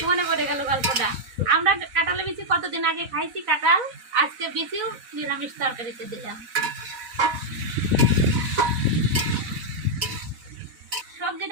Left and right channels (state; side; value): late; left; 4.0 ms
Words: মনে পড়ে গেল গল্পটা। আমরা কাঁঠালের বিচি কতদিন আগে খাইছি কাঁঠাল, আজকে বিচিও নিরামিষ তরকারিতে দিলাম।